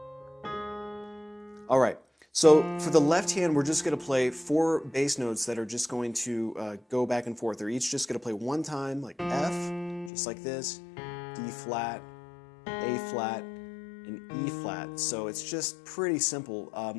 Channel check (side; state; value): right; drops out; at 10.1 s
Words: All right, so for the left hand, we're just going to play four bass notes that are just going to go back and forth. They're each just going to play one time, like F, just like this, D flat, A flat, and E flat. So it's just pretty simple.